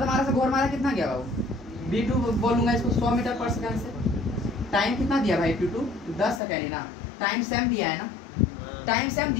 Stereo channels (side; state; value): right; drops out; at 6.4 s